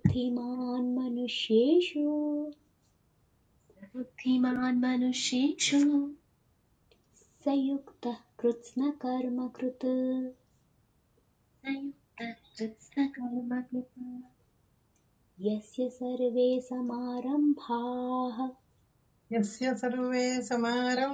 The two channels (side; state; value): both; identical; correlation 1.00